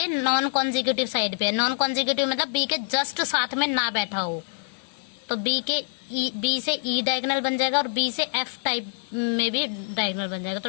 नॉन कॉन्जिक्यूटिव साइड पे है। नॉन कॉन्जिक्यूटिव मतलब बी के जस्ट साथ में ना बैठा हो, तो बी से ई डायगोनल बन जाएगा, और बी से एफ टाइप में भी डायगोनल बन जाएगा।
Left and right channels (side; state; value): right; silent; digital silence